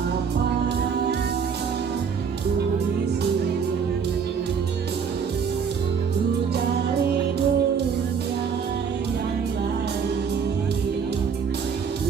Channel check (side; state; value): left; quieter; 6.5 dB